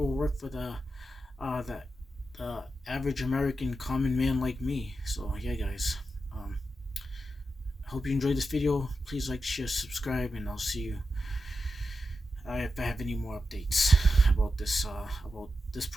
work for the average American common man like me. So yeah, guys, hope you enjoyed this video. Please like, share, subscribe, and I'll see you if I have any more updates about this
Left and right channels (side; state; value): both; normal; correlation 0.89